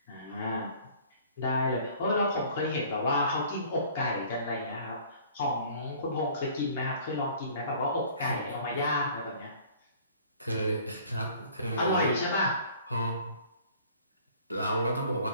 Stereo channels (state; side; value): inverted; both; correlation -0.51